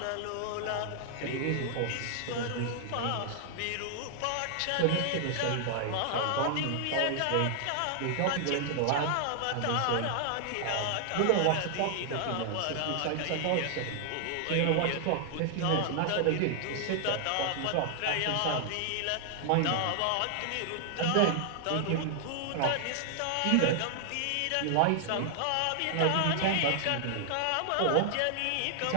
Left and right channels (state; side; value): different; both; correlation 0.00